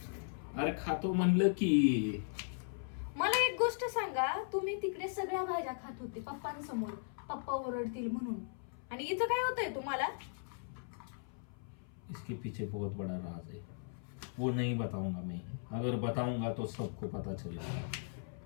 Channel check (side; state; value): right; silent; 53 dB below the other